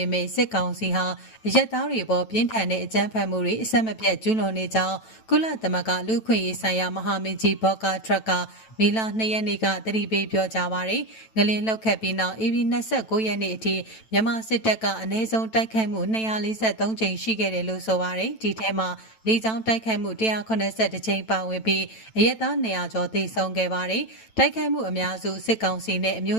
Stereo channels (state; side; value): late; right; 9.0 ms